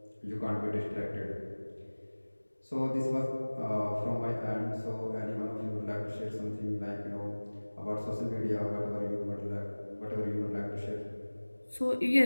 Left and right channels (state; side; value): inverted; both; correlation -1.00